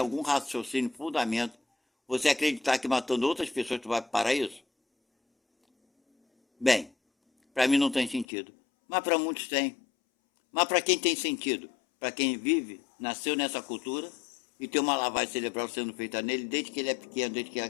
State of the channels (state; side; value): drops out; right; at 8.2 s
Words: raciocínio, fundamento, você acreditar que matando outras pessoas tu vai para o paraíso? Bem, para mim não tem sentido, mas para muitos tem. Mas para quem tem sentido? Para quem vive, nasceu nessa cultura e tem uma lavagem cerebral sendo feita nele desde que ele é pequeno, desde que